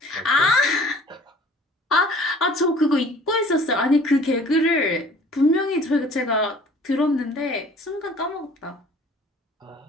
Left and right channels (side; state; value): both; normal; correlation 0.51